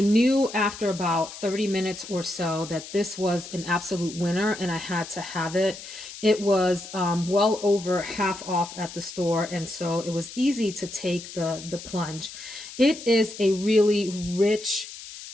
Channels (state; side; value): noise; left; hiss, 13 dB below the sound